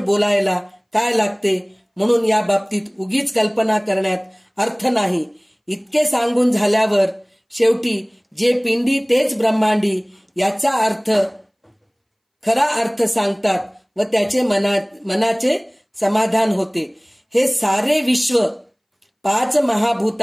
बोलायला काय लागते. म्हणून या बाबतीत उगीच कल्पना करण्यात अर्थ नाही. इतके सांगून झाल्यावर शेवटी जे पिंडी तेच ब्रह्मांडी याचा खरा अर्थ सांगतात व त्याचे मनाचे समाधान होते. हे सारे विश्व 5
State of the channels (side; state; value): both; identical; correlation 1.00